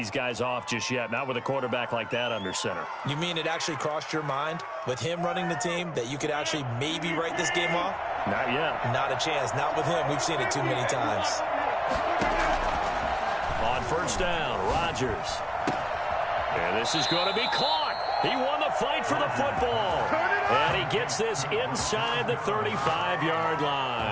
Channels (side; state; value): both; identical; correlation 1.00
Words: guys off just yet, not with a quarterback like that under center. You mean it actually crossed your mind with him running the team that you could actually maybe write this game off? Not yet. Not a chance. Not with him. We've seen it too many times. On first down, Rodgers. And this is going to be caught. He won the fight for the football. And he gets this inside the 35-yard